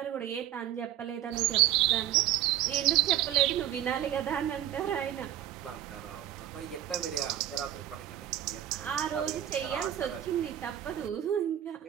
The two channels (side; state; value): left; quieter; 12.1 dB